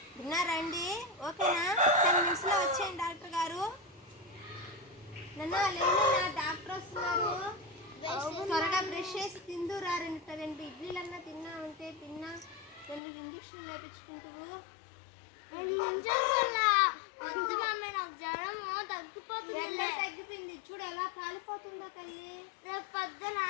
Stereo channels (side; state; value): right; drops out; at 13.0 s